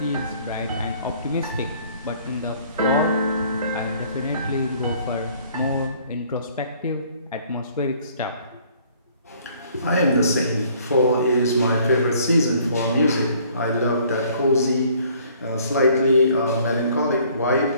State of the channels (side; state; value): both; inverted; correlation -0.59